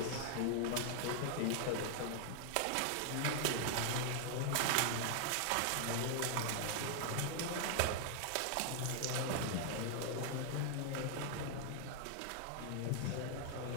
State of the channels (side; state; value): both; different; correlation 0.00